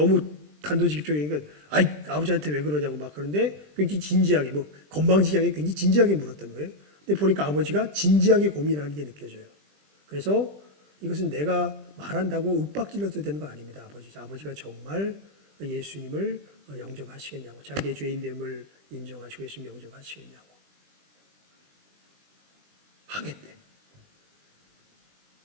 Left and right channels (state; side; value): late; left; 20 ms